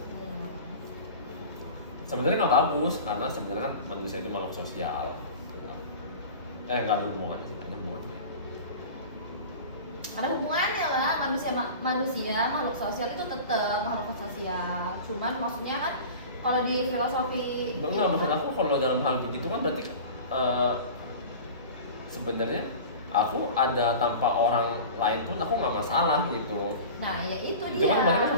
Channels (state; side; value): inverted; both; correlation -0.36